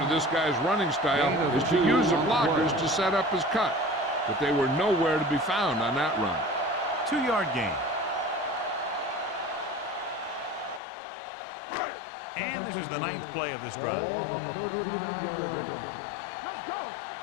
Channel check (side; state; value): right; drops out; at 10.8 s